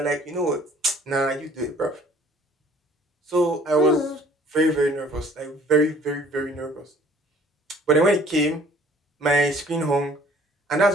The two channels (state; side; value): normal; both; correlation 0.54